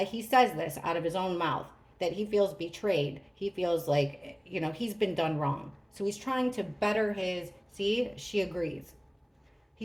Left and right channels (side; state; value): both; identical; correlation 1.00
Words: he says this out of his own mouth that he feels betrayed. He feels like, he's been done wrong. So he's trying to better his, see, she agrees.